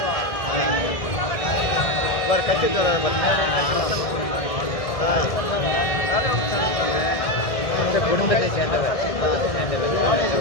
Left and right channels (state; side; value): late; right; 1.7 ms